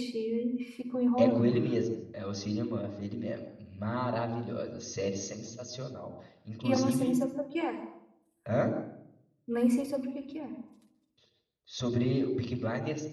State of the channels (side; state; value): both; identical; correlation 1.00